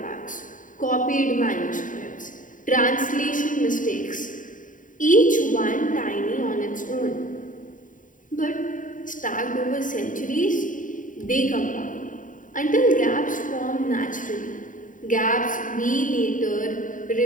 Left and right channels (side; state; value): right; late; 0.38 ms